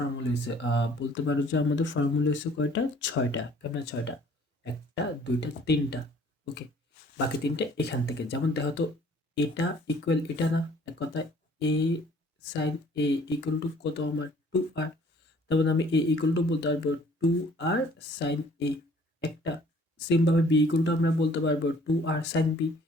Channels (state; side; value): normal; both; correlation 0.56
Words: হয়েছে? বলতে পারো যে আমাদের ফর্মুলা হয়েছে কয়টা? 6টা। কেমন 6টা? 1টা 2টা 3টা। ওকে, বাকি 3টে এখান থেকে। যেমন দেখো তো, এটা ইকুয়াল এটা না, এক কথায় এ সাইন এ ইকুয়াল টু কত আমার 2r। তারপর আমি এ ইকুয়াল টু বলতে পারবো 2r সাইন এ একটা। সেমভাবে বি ইকুয়াল টু আমরা বলতে পারবো 2r সাইন বি।